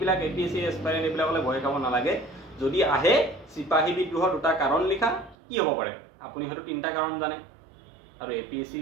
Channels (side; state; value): left; drops out; at 5.4 s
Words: APSC এছপাইৰেণ্ট এইবিলাকলৈ ভয় খাব নালাগে যদি আহে চিপাহী বিদ্ৰোহৰ দুটা কাৰণ লিখা কি হ'ব পাৰে আপুনি হয়তো 3টা কাৰণ জানে আৰু APSC